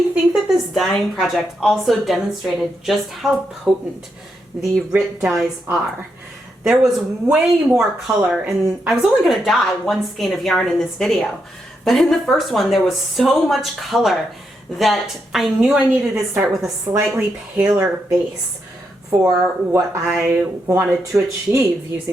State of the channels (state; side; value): normal; both; correlation 0.82